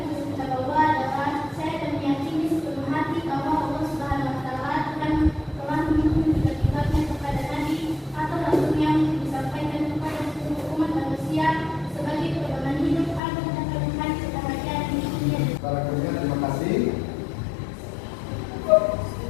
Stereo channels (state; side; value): drops out; right; at 13.2 s